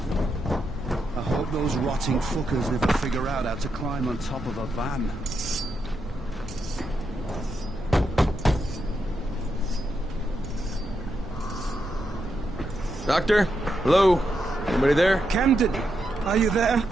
Those rotting fuckers never figure out how to climb on top of a van. Doctor? Hello? Anybody there? Camden, are you there?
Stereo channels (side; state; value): both; normal; correlation 0.83